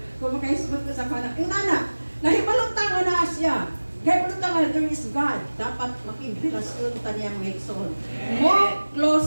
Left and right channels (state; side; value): inverted; both; correlation -1.00